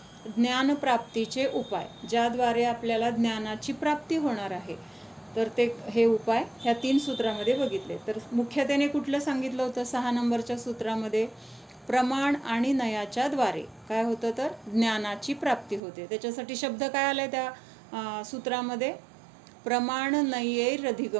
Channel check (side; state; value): left; drops out; at 15.8 s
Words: ज्ञानप्राप्तीचे उपाय, ज्याद्वारे आपल्याला ज्ञानाची प्राप्ती होणार आहे, तर ते हे उपाय ह्या 3 सूत्रामध्ये बघितले. तर मुख्यतेने कुठलं सांगितलं होतं? 6 नंबरच्या सूत्रामध्ये प्रमाण आणि नयाच्या द्वारे काय होतं? तर ज्ञानाची प्राप्ती होते. त्याच्यासाठी शब्द काय आलाय त्या सूत्रामध्ये? प्रमाण